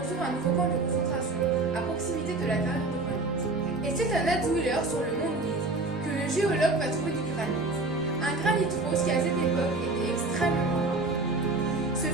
un nouveau camp de concentration à proximité de la carrière de granit. Et c'est à Natzwiller sur le mont Louise que le géologue va trouver du granit. Un granit rose qui à cette époque était extrêmement rare. Ce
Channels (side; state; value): left; quieter; 3.2 dB